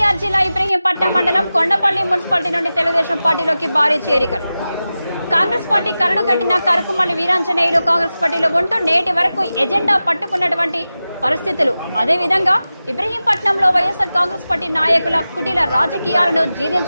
జిల్లా ఇబ్రహీంపట్నం మండలం కొండపల్లి మున్సిపాలిటీ నుండి తెలుగుదేశం పార్టీలోకి భారీ చేరికలు. కాంగ్రెస్ పార్టీ కరడు కట్టిన కరుకుమల్లి వీరాంజనేయులు కాంగ్రెస్ పార్టీలో ఉంటూ నేటి వరకు ఎజెండా పట్టుకున్నటువంటి పరిస్థితులు. అదేవిధంగా ఇబ్రహీంపట్నంలో వైఎస్ఆర్ కాంగ్రెస్ పార్టీ నాయకుల కుటీల రాజకీయాలను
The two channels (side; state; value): both; inverted; correlation -0.94